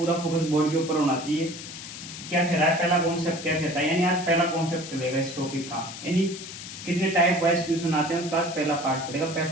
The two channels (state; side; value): noise; left; hiss, 11 dB below the sound